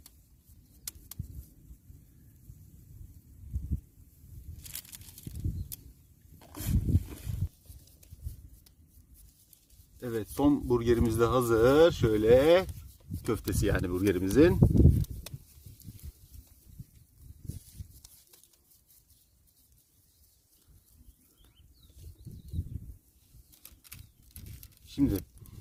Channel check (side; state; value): both; identical; correlation 1.00